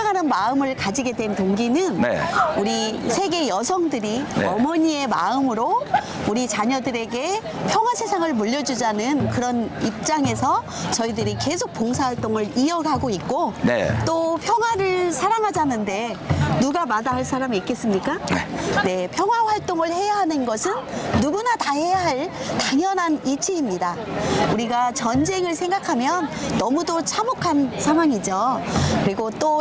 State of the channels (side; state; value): both; identical; correlation 1.00